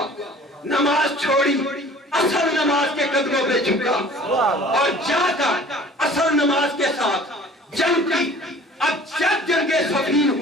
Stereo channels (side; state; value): both; normal; correlation 0.48